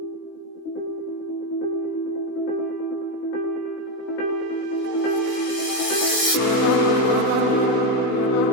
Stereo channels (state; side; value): late; right; 16 ms